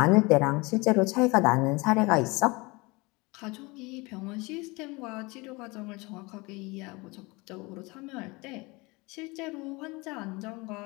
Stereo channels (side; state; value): right; quieter; 25.0 dB